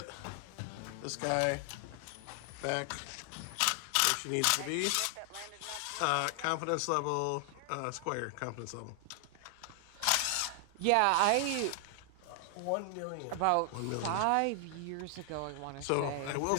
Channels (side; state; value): both; different; correlation 0.00